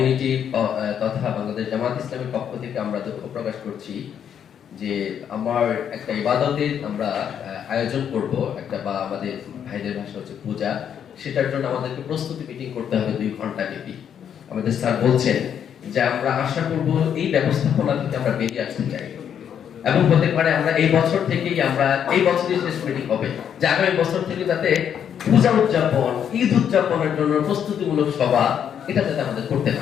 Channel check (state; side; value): quieter; right; 8.7 dB